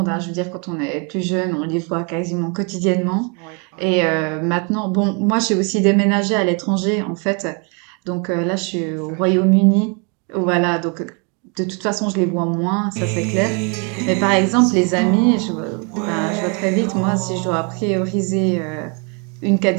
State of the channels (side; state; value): left; quieter; 35.2 dB